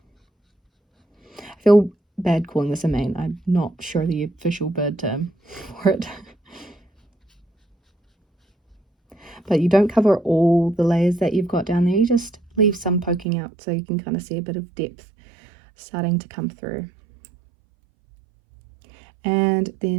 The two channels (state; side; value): drops out; left; at 13.2 s